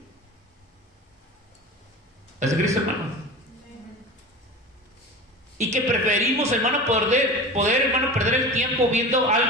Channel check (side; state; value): both; normal; correlation 0.32